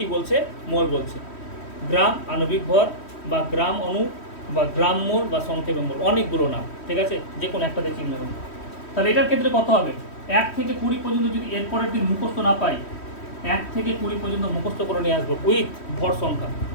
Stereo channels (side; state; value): right; late; 3.1 ms